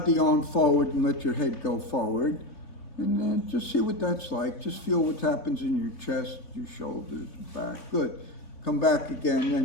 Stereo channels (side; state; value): right; late; 3.5 ms